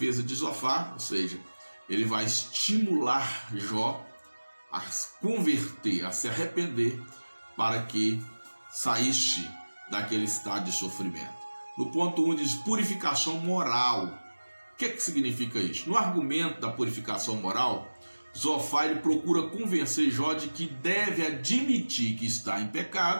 de Zofar, ou seja, ele vai estimular Jó a converter, a se arrepender, para que saísse daquele estado de sofrimento. No ponto 1 diz purificação moral. O que significa isso? No argumento da purificação moral, Zofar ele procura convencer Jó de que deve admitir que está em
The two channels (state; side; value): inverted; both; correlation -1.00